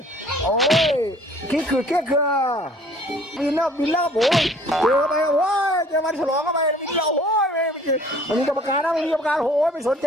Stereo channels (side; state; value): both; normal; correlation 0.54